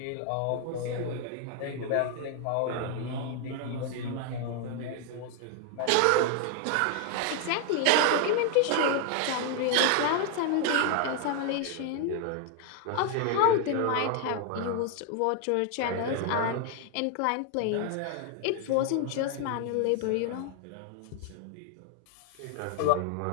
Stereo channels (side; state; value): both; different; correlation 0.00